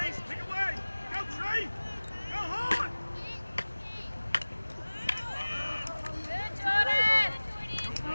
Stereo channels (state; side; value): inverted; both; correlation -1.00